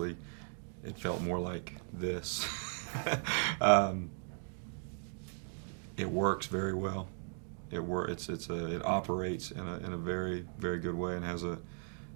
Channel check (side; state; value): left; silent; 53 dB below the other